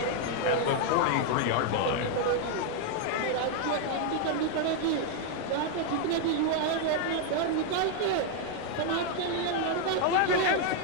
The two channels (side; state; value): both; different; correlation 0.00